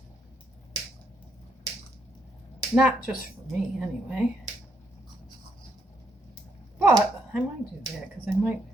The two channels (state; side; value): normal; both; correlation 0.75